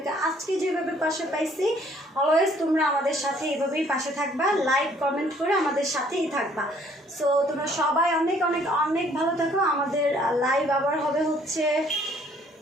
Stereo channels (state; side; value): normal; both; correlation 0.61